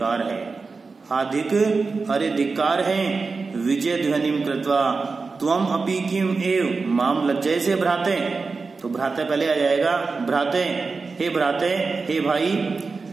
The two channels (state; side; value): quieter; left; 4.3 dB